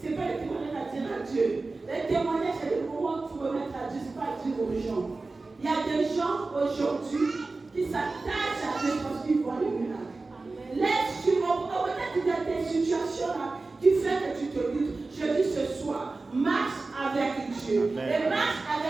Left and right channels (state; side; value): quieter; left; 3.6 dB